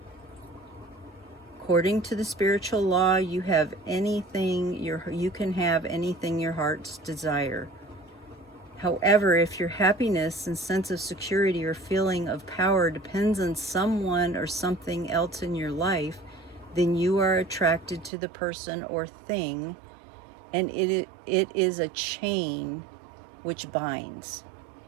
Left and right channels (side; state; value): left; drops out; at 18.1 s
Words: According to the spiritual law, you have anything you can have anything your heart's desire. However, if your happiness and sense of security or feeling of power depends on someone or something else in your life, then you are attracted to the person or thing, and it is a chain which binds.